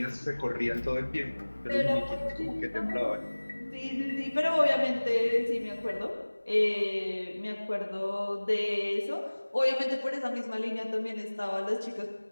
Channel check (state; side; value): inverted; both; correlation -1.00